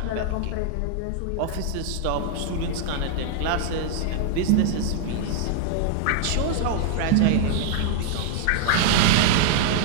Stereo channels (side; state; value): both; different; correlation -0.01